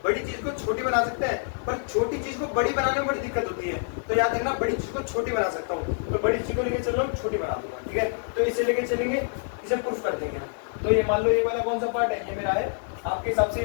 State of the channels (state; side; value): silent; right; digital silence